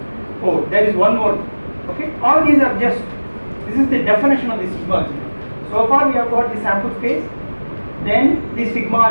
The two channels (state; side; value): inverted; both; correlation -1.00